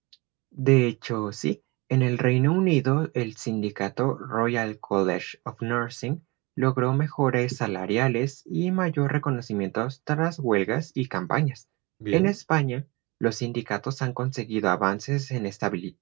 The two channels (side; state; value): left; quieter; 25.0 dB